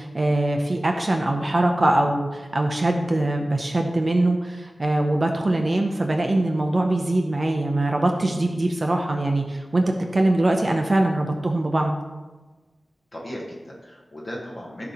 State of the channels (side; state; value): both; normal; correlation 0.97